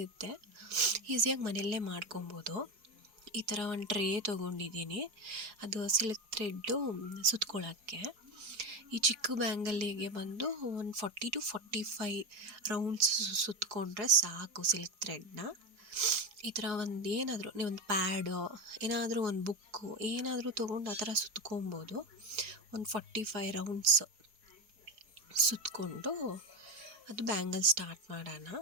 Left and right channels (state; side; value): late; left; 4.5 ms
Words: ಈಸಿಯಾಗಿ ಮನೆಯಲ್ಲೇ ಮಾಡ್ಕೊಬೋದು. ಈ ಥರ ಒಂದು ಟ್ರೇ ತೊಗೊಂಡಿದ್ದೀನಿ, ಅದು ಸಿಲ್ಕ್ ಥ್ರೆಡ್ಡು ಸುತ್ಕೊಳ್ಳೋಕ್ಕೆ. ಈ ಚಿಕ್ಕ ಬ್ಯಾಂಗಲ್ಲಿಗೆ ಬಂದು ಒಂದು 40 to 45 ರೌಂಡ್ಸ್ ಸುತ್ತಕೊಂಡ್ರೆ ಸಾಕು ಸಿಲ್ಕ್ ಥ್ರೆಡ್ನ. ಈ ಥರ ನೀವೊಂದು ಪ್ಯಾಡು, ಏನಾದರೂ ಒಂದು ಬುಕ್ಕು ಏನಾದರೂ ತೊಗೊಂಡು ಆ ಥರ ಸುತ್ಕೊಬೋದು. ಒಂದು 45 ರೌಂಡ್ಸ್ ಸುತ್ತಕೊಂಡು ಅದು ಬ್ಯಾಂಗಲ್ ಸ್ಟಾರ್ಟ್ ಮಾಡೋಣ.